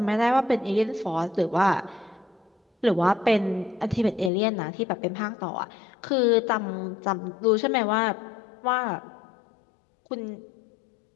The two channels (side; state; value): right; drops out; at 4.3 s